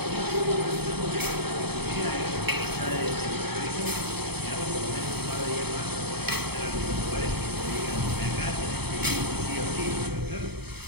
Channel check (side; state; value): left; late; 0.97 ms